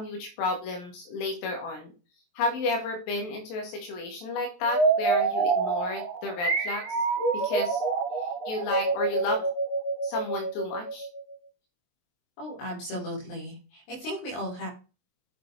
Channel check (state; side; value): late; right; 23 ms